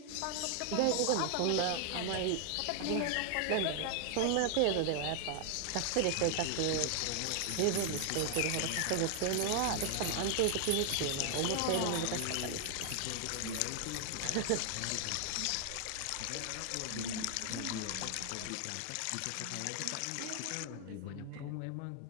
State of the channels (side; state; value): both; different; correlation 0.00